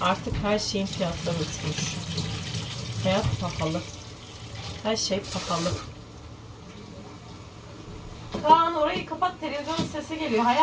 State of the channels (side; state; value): both; identical; correlation 1.00